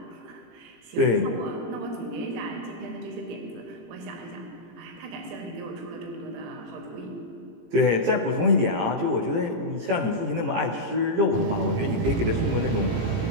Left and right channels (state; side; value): late; left; 18 ms